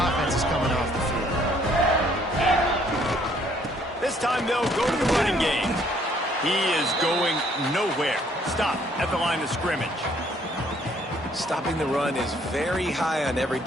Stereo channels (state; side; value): normal; both; correlation 0.64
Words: is coming off the field. This time they'll go to the running game. He is going nowhere. Stop at the line of scrimmage. Stopping the run is very high on every